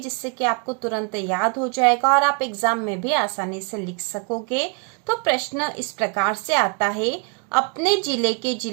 कि आपको तुरंत याद हो जाएगा और आप एग्जाम में भी आसानी से लिख सकोगे। तो प्रश्न इस प्रकार से आता है, अपने जिले के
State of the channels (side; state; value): left; quieter; 36.6 dB